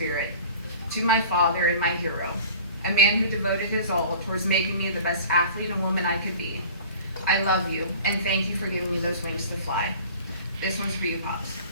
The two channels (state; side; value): inverted; both; correlation -0.44